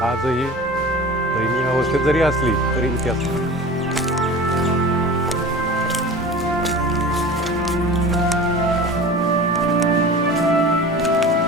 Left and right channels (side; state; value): both; normal; correlation 0.36